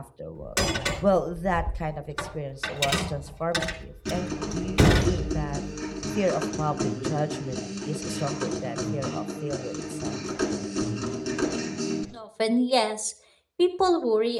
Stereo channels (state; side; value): identical; both; correlation 1.00